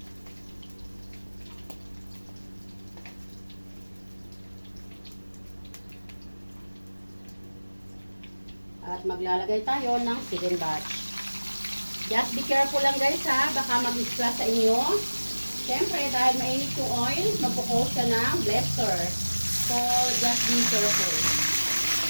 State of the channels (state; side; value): inverted; both; correlation -1.00